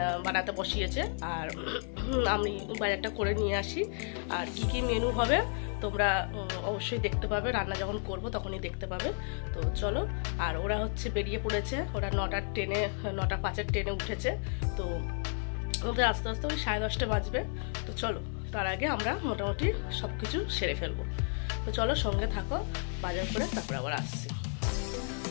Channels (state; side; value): silent; right; 56 dB below the other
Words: বানাতে বসিয়েছে। আর আমি বাজারটা করে নিয়ে আসি। আর কি কি মেনু হবে তোমরা অবশ্যই দেখতে পাবে, রান্না যখন করব তখনই দেখতে পাবে। তো চলো, আর ওরা হচ্ছে বেরিয়ে পড়েছে, ওরা 9:05-এর ট্রেনে উঠেছে। তো ওদের আস্তে আস্তে ওই 10:30 বাজবে। তো চলো, তার আগে আমরা মোটামুটি সব কিছু সেরে ফেলবো। তো চলো, সঙ্গে থাকো, বাজার করে তারপর আবার আসছি।